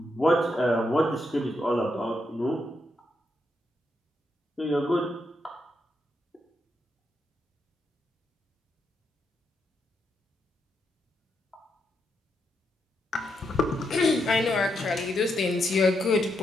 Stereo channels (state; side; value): normal; both; correlation 0.81